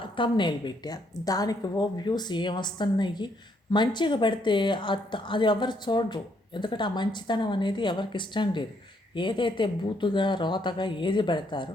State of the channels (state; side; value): normal; both; correlation 0.72